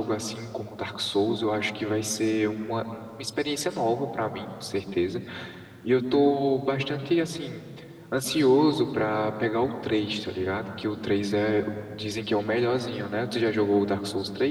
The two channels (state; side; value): identical; both; correlation 1.00